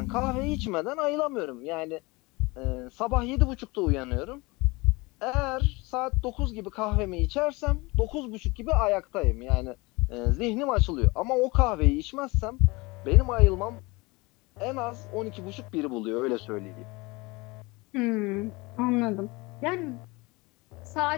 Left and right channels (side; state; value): right; quieter; 24.3 dB